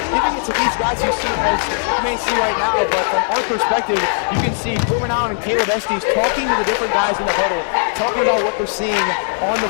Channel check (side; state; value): right; silent; digital silence